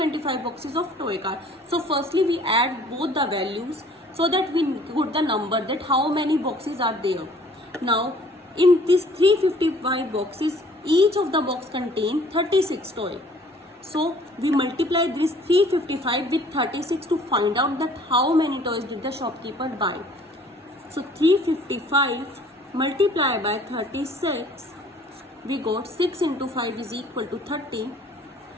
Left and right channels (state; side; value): normal; both; correlation 0.55